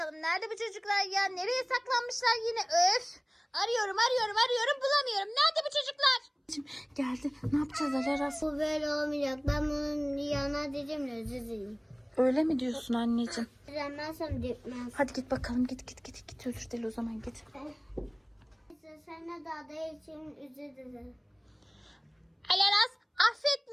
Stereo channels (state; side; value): identical; both; correlation 1.00